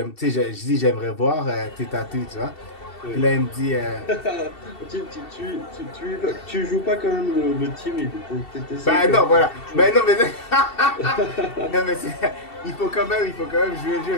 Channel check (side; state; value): right; late; 2.7 ms